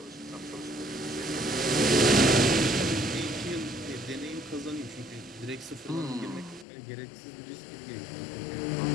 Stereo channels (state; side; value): drops out; right; at 6.7 s